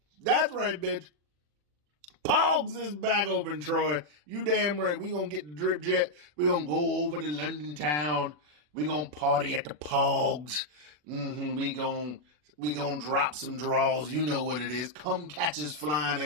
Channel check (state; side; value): late; left; 40 ms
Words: That's right, bitch. Pogs is back open, Troy. You damn right. We gonna get the drip jet. We gonna go over to London town. We gonna party at the Pogs. We gonna drop some draws. You know what it is. Come catches flying